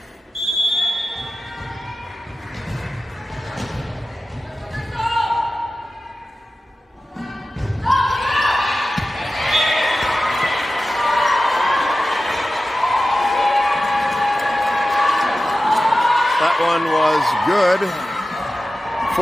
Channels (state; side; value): normal; both; correlation 0.94